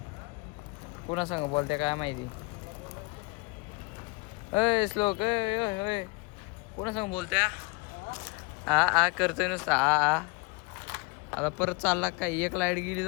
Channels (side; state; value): right; quieter; 27.4 dB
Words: कोणा सांग बोलते काय माहिती. अय श्लोक अय कोणा सांग बोलते. आ करतोय नुसतं आ. आता परत चालला काय. एक लाईट गेली